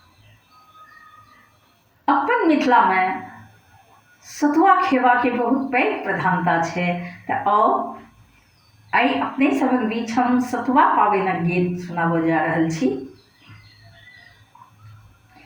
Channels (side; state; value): both; identical; correlation 1.00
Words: अपन मिथिला में सतुआ खेवा के बहुत पैघ प्रधानता है। तो आई अपने सबक बीच हम सतुआ पावनक गीत सुनाबो जा रहल छी।